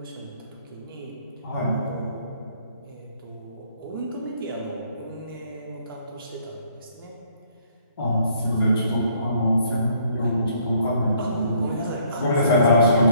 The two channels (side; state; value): both; inverted; correlation -0.64